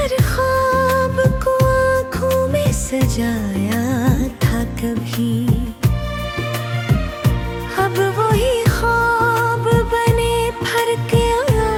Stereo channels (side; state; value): both; identical; correlation 1.00